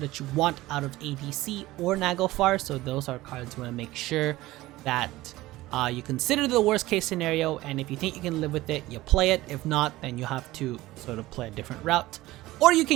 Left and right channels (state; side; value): quieter; left; 17.7 dB